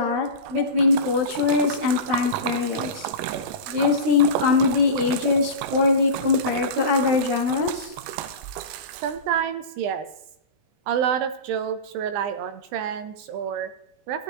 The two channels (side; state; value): left; late; 19 ms